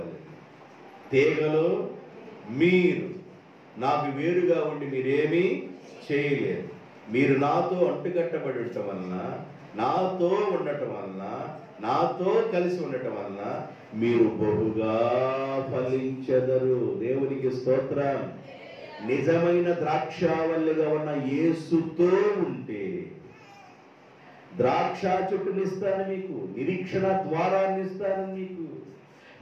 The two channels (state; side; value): identical; both; correlation 1.00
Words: తీగలో మీరు నాకు వేరుగా ఉండి మీరేమీ చేయలేరు. మీరు నాతో అంటుకట్టబడి ఉండటం వలన, నాతో ఉండటం వలన, నాతో కలిసి ఉండటం వలన మీరు బహుగా ఫలించెదరు. దేవునికి స్తోత్రం. నిజమైన ద్రాక్షవల్లిగా ఉన్న యేసుతో ఉంటే ద్రాక్ష చెట్టునిస్తాను మీకు, నిరీక్షణ ద్వారాన్ని ఇస్తాను మీకు.